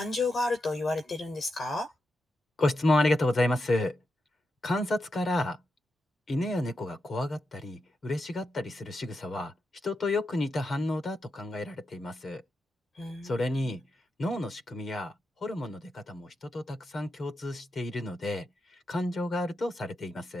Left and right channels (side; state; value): both; normal; correlation 0.87